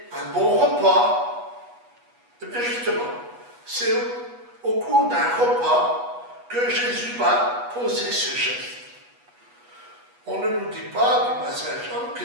un bon repas. Et bien justement, c'est au cours d'un repas que Jésus va poser ce geste. On ne nous dit pas du Saint Jean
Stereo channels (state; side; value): late; left; 8.2 ms